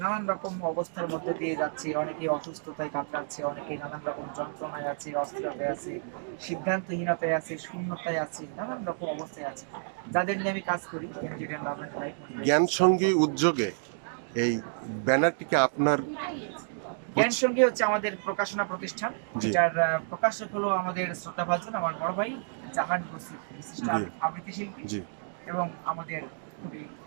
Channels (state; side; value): silent; left; digital silence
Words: নানান রকম অবস্থার মধ্যে দিয়ে যাচ্ছে। অনেকে অসুস্থতায় কাতরাচ্ছে, অনেকে নানান রকম যন্ত্রণায় আছে, অস্থিরতায় আছে, সিদ্ধান্তহীনতায় আছে, শূন্যতায় আছে, নানান রকম অবস্থায় আছে, যাদের নিয়ে আমি কাজ করি। যেটা নাম জ্ঞান সঙ্গী উদ্যোগে এই ব্যানারটিকে আপনার জ্ঞান সঙ্গী হচ্ছে আমাদের প্রকাশনা প্রতিষ্ঠান, জি যেটার প্রকাশক হলো আমাদের শ্রোতাভাজন আমার বড় ভাই জাহান বসির, বিশিষ্ট জি আবৃত্তি শিল্পী জি এবং আমাদের খুবই